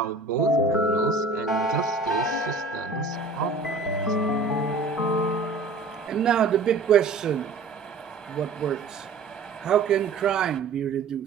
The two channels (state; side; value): quieter; left; 3.9 dB